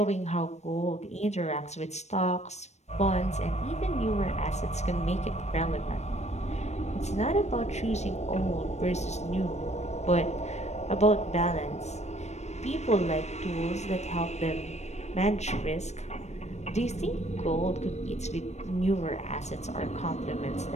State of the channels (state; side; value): late; right; 0.32 ms